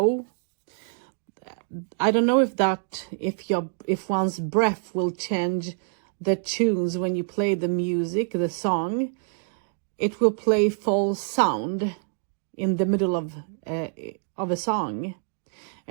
I don't know if one's breath will change the tunes when you play the music, the song. It will play false sound in the middle of a song,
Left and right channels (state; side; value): silent; left; digital silence